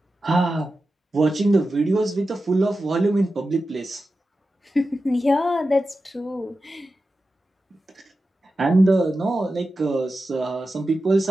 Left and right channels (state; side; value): normal; both; correlation 0.92